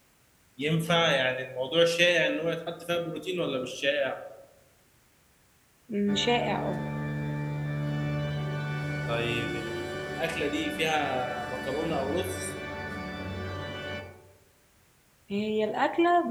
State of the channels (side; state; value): both; identical; correlation 1.00